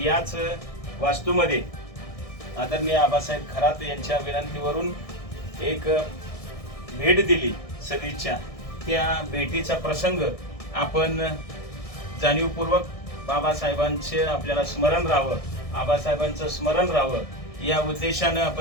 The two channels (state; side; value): late; right; 1.6 ms